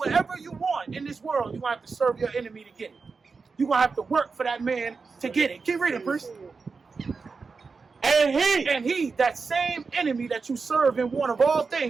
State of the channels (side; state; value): left; quieter; 4.7 dB